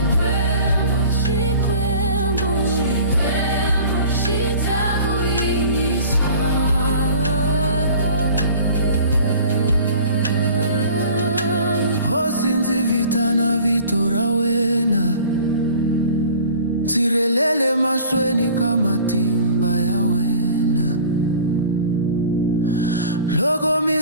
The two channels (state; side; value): inverted; both; correlation -0.45